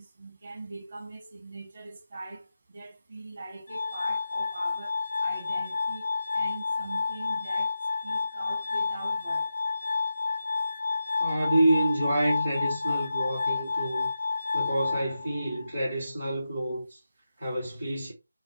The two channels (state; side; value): inverted; both; correlation -0.90